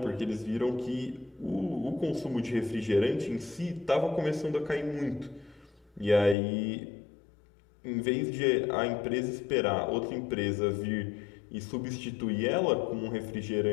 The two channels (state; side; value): drops out; right; at 6.4 s